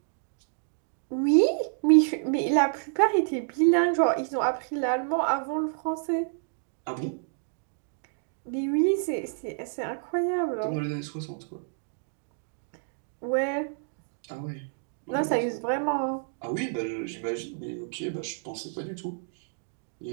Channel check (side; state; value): left; silent; digital silence